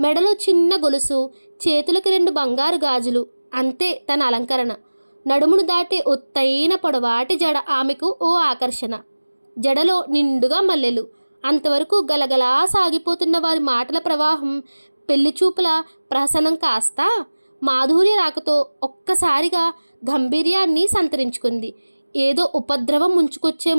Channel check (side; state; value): both; inverted; correlation -1.00